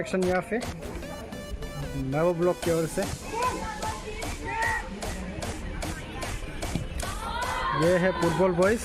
यहाँ पे महबूब ब्लॉक की ओर से। ये है फुटबॉल बॉयज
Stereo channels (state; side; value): identical; both; correlation 1.00